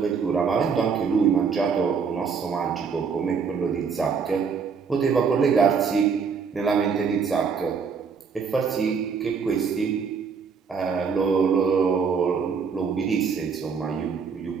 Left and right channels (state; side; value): quieter; left; 5.9 dB